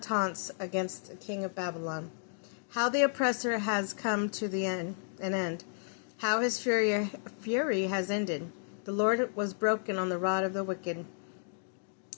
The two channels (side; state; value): right; silent; digital silence